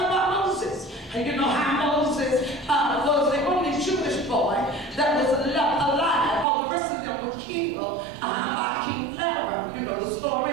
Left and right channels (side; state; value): left; drops out; at 6.5 s